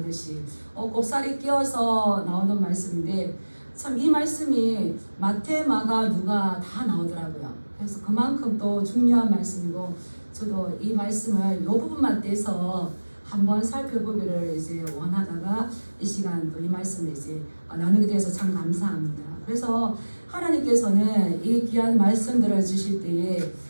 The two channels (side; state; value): both; inverted; correlation -1.00